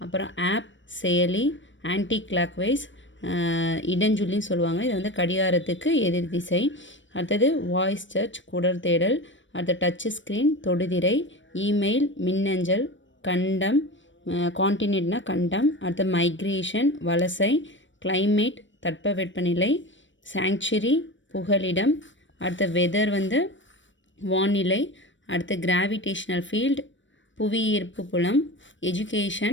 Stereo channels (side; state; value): right; late; 0.55 ms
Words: அப்புறம் ஆப் செயலி, ஆன்டி கிளாக் வைஸ் இடஞ்சொல்லின்னு சொல்லுவாங்க. இது வந்து கடிகாரத்துக்கு எதிர் திசை. அடுத்தது வாய்ஸ் சர்ச் குடல் தேடல், அடுத்த டச் ஸ்க்ரீன் தொடுதிரை, இமெயில் மின்னஞ்சல், கண்டம் கான்டினென்ட்னா கண்டம், அடுத்த மைக்ரேஷன் வலசை, கிளைமேட் தட்பவெப்பநிலை, சாங்சுரி புகலிடம், அடுத்த வெதர் வந்து வானிலை, அடுத்த கிராவிடேஷனல் ஃபீல்டு புவியீர்ப்பு புலம்,